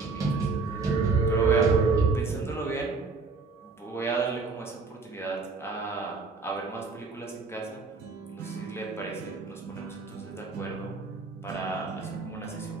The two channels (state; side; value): quieter; left; 4.2 dB